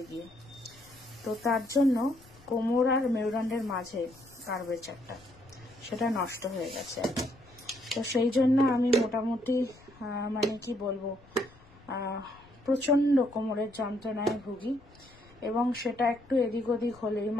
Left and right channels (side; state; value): left; noise; rumble, 25 dB below the sound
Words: গিয়ে। তো তার জন্য কোমর আর মেরুদণ্ডের মাঝে কার্ভেচারটা সেটা নষ্ট হয়ে গেছে। তো সেই জন্য আমি মোটামুটি মানে কি বলবো, প্রচণ্ড কোমরের যন্ত্রণায় ভুগি এবং সেটা একটু এদিক ওদিক হলেই,